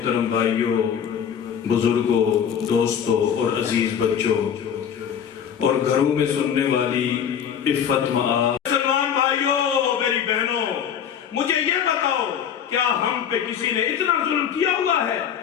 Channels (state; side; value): quieter; right; 8.3 dB